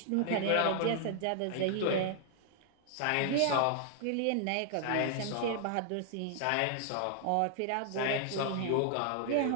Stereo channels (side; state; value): both; different; correlation 0.00